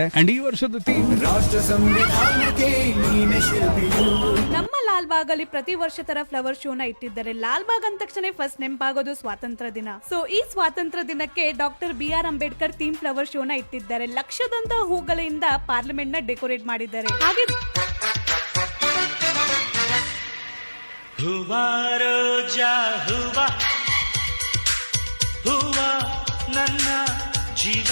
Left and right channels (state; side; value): inverted; both; correlation -1.00